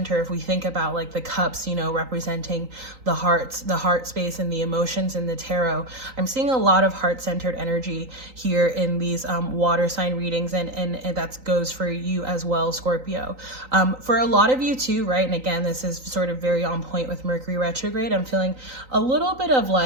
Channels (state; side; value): late; left; 3.9 ms